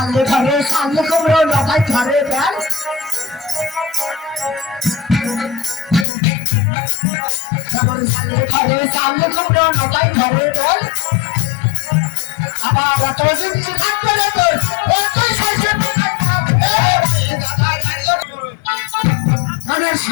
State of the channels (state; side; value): drops out; right; at 6.1 s